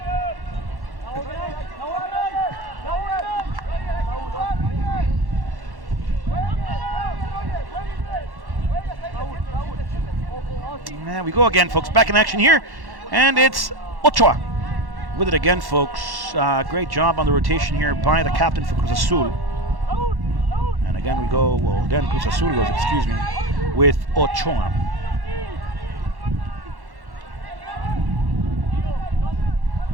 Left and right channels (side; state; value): left; late; 1.1 ms